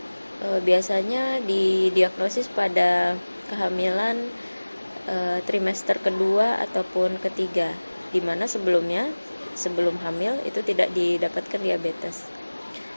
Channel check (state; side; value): inverted; both; correlation -1.00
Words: Biasanya didiagnosis pada kehamilan trimester kedua ataupun ketiga, di mana sebelum hamil itu tidak didapatkan diabetes.